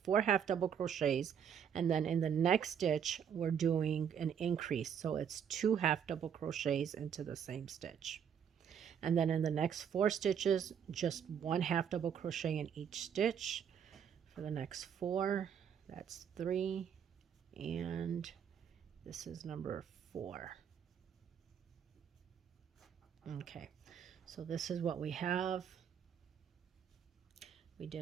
half double crochets, and then in the next stitch we're doing an increase, so it's 2 half double crochets into the same stitch. And then in the next 4 stitches, just 1 half double crochet in each stitch. For the next 4, that's 3, and this is number 4. Okay, so this is what we have. We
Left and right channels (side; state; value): left; quieter; 8.1 dB